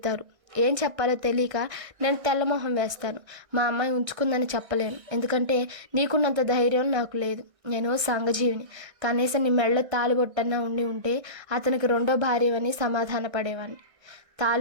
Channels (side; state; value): left; late; 1.6 ms